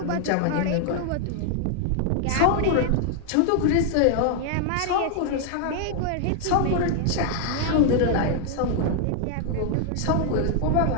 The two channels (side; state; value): both; different; correlation 0.00